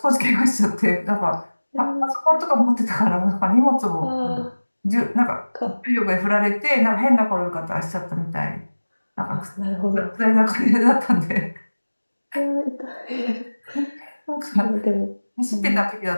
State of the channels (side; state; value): both; inverted; correlation -1.00